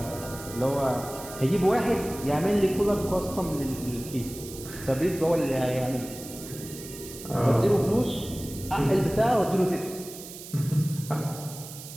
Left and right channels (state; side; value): noise; right; hiss, 13 dB below the sound